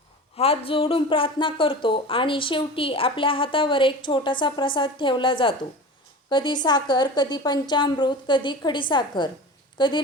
हात जोडून प्रार्थना करतो आणि शेवटी आपल्या हातावर एक छोटासा प्रसाद ठेवला जातो. कधी साखर, कधी पंचामृत, कधी खडीसाखर, कधी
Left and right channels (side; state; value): both; normal; correlation 0.34